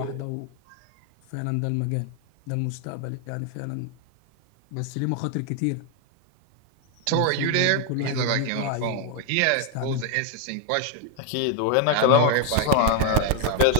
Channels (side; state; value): both; different; correlation 0.00